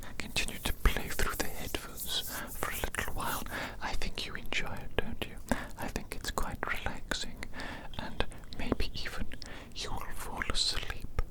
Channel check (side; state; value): both; identical; correlation 1.00